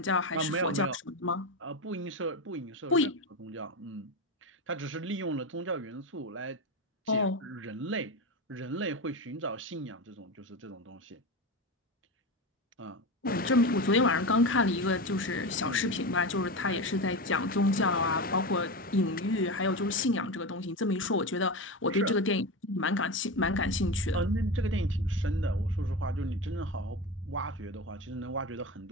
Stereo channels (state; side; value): normal; both; correlation 0.20